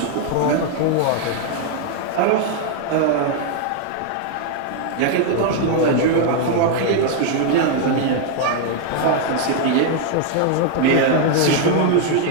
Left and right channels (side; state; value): both; different; correlation 0.00